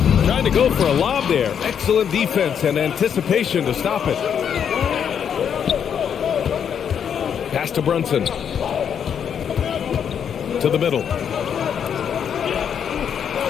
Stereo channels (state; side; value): quieter; right; 8.0 dB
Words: Trying to go for a lob there. Excellent defense and anticipation to stop it. Pass to Brunson. To the middle.